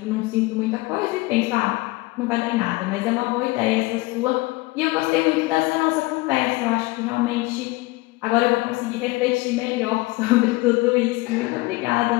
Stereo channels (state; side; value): quieter; right; 21.7 dB